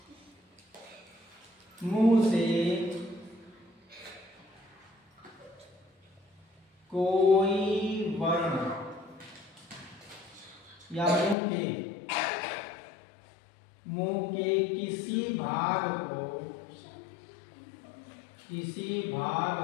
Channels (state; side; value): drops out; right; at 11.4 s